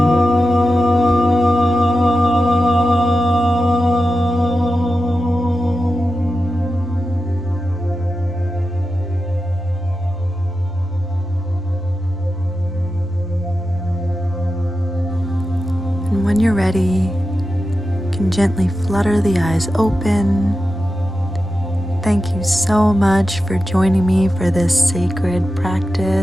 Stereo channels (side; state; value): both; normal; correlation 0.91